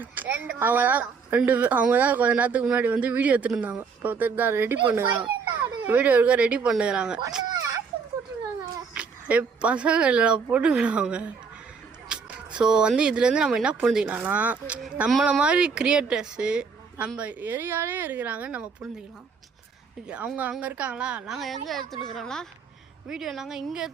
அவங்க தான் கொஞ்ச நேரத்துக்கு முன்னாடி வந்து வீடியோ எடுத்துருந்தாங்க. இப்போ ஒருத்தர் தான் ரெடி பண்ணுறாங்க, வீடியோ எடுக்க ரெடி பண்ணுறாங்க. பசங்க இல்லை போட்டுக்கிறாங்க. ஸோ வந்து இதுலேருந்து நம்ம என்ன புரிஞ்சுக்கலாம்னா, நம்மளை மாதிரி கிரியேட்டர்ஸு நம்ம ஏரியாலே இருக்கிறாங்கன்னு நம்ம புரிஞ்சுக்கலாம். அவங்க அங்கே இருக்காங்களா, நாங்கள் எங்கே எடுத்துட்டுருக்குறோம்னா வீடியோ, நாங்கள் இங்கே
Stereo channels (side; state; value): left; quieter; 5.5 dB